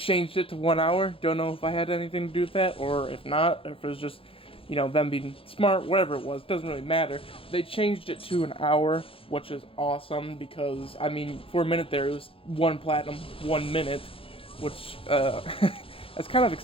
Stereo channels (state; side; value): late; right; 0.27 ms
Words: it to 1 hour. Don't know if I had anything to do with that, or if not, if it was just you know, them being smart, whatever it was, doesn't really matter. They changed it to an hour, which is awesome because, I mean, for a minute there, it was 1 platinum, 1 minute, which, that's kind of